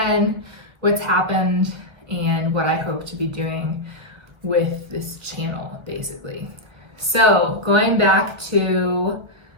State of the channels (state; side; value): late; left; 1.2 ms